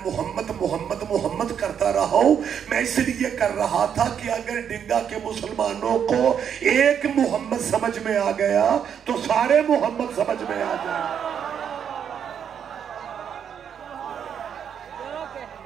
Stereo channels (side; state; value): left; quieter; 8.2 dB